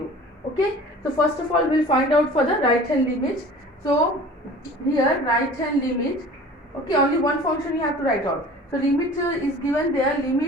Okay, so first of all we will find out for the right hand limit. So here right hand limit, okay, only one function you have to write out. So limit is given there,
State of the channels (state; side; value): normal; both; correlation 0.43